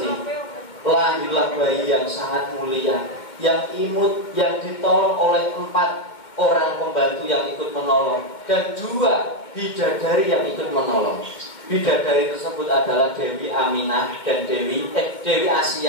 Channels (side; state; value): right; late; 2.2 ms